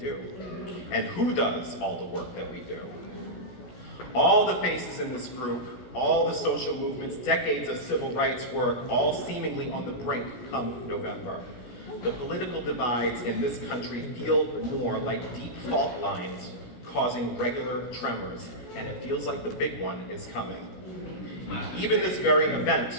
And who does all the work that we do? All the faces in this group, all the social movements, decades of civil rights work, all seemingly on the brink come November. The political divides in this country feel more like deep fault lines causing regular tremors, and it feels like the big one is coming. Even this very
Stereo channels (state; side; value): late; right; 16 ms